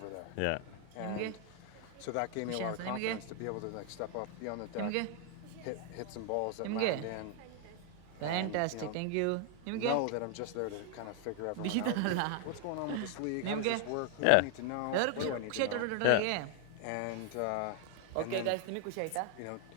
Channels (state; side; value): different; both; correlation 0.00